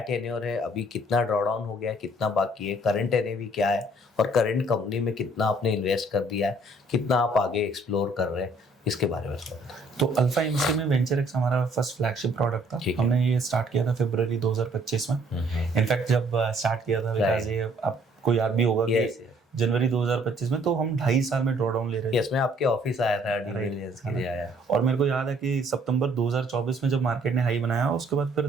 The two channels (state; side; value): normal; both; correlation 0.61